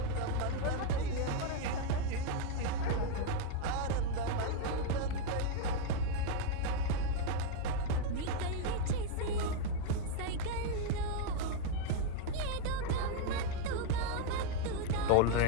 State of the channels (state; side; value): different; both; correlation 0.00